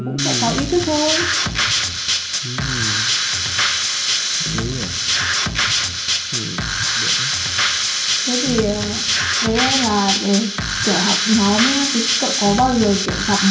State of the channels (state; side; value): identical; both; correlation 1.00